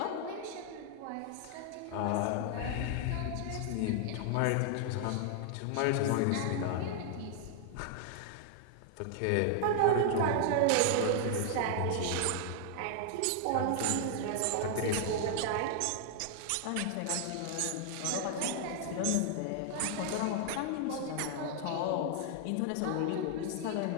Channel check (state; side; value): different; both; correlation 0.00